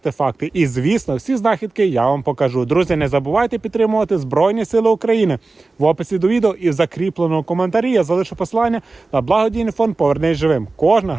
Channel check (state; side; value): quieter; left; 3.6 dB